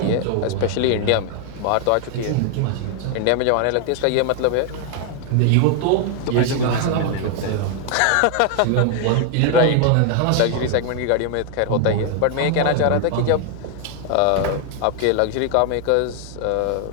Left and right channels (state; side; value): different; both; correlation 0.00